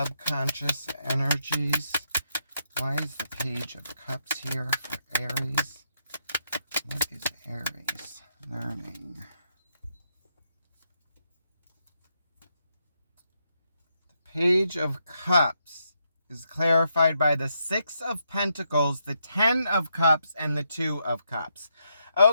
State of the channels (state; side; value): inverted; both; correlation -0.79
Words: energies? Why is the Page of Cups here for Aries? What is Aries learning? The Page of Cups is clarified by the 6 of Pentacles, the 10 of Cups, and the 2 of Cups.